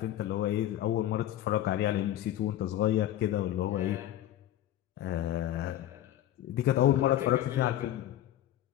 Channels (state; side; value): quieter; right; 12.7 dB